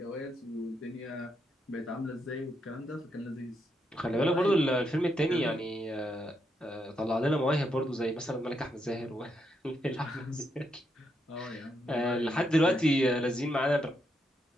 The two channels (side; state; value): both; normal; correlation 0.80